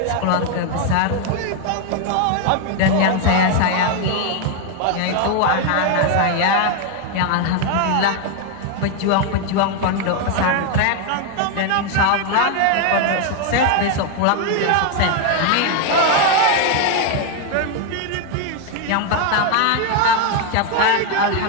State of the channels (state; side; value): different; both; correlation 0.01